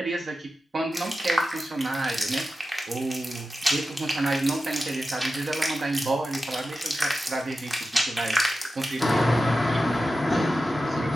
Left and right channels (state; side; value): normal; both; correlation 0.92